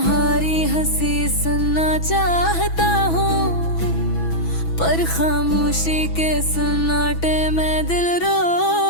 हंसी सुनना चाहता हूँ, पर खामोशी के सन्नाटे में दिल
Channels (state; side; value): late; right; 6.1 ms